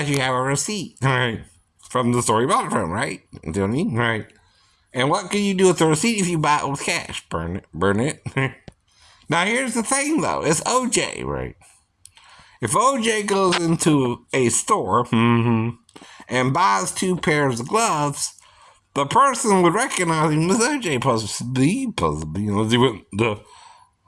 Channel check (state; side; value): identical; both; correlation 1.00